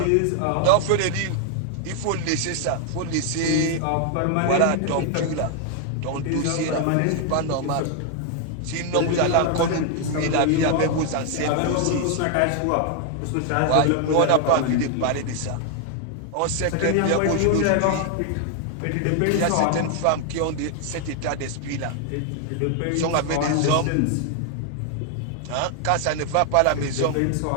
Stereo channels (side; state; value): both; different; correlation 0.00